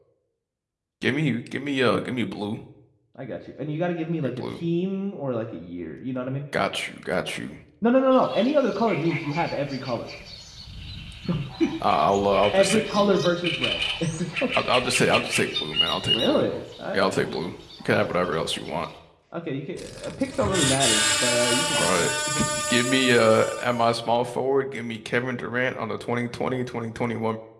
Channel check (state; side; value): identical; both; correlation 1.00